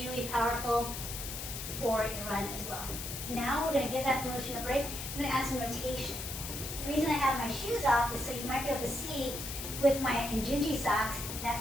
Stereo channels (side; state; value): left; noise; hiss, 7 dB below the sound